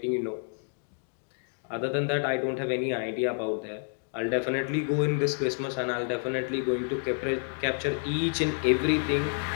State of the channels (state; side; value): silent; right; 58 dB below the other